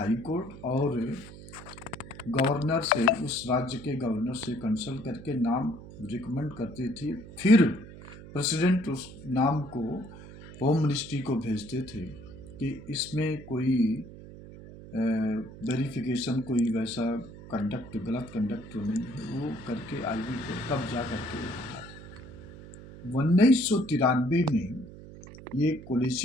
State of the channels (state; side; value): noise; right; hum, 15 dB below the sound